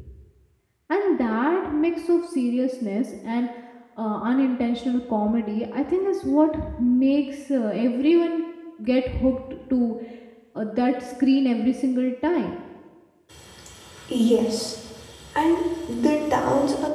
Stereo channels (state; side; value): identical; both; correlation 1.00